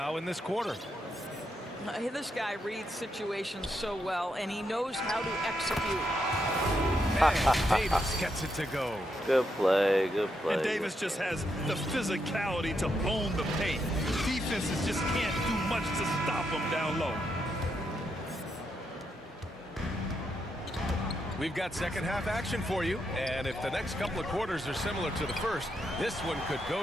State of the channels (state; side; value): normal; both; correlation 0.81